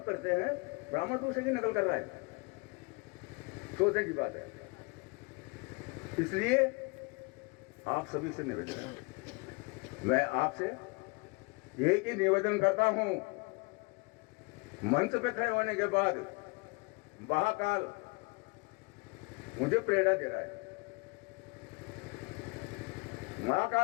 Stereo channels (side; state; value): right; quieter; 28.7 dB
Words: करते हैं, ब्राह्मण दूसरे की नकल कर रहा है, सोचने की बात है। इसलिए आप सभी से निवेदन है, मैं आपसे एक ही निवेदन करता हूं, मंच पे खड़े होने के बाद महाकाल मुझे प्रेरणा दे रहा है।